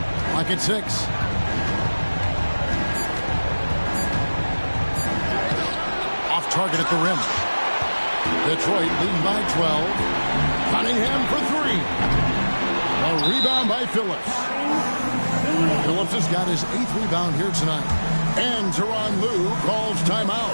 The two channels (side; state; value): both; inverted; correlation -1.00